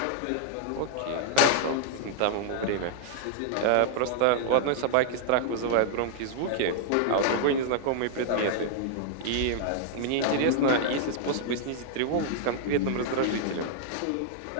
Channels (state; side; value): different; both; correlation -0.01